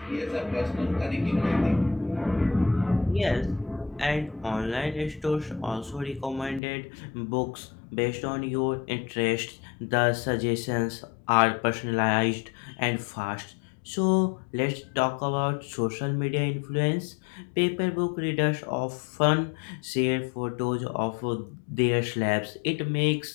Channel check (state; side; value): drops out; right; at 6.6 s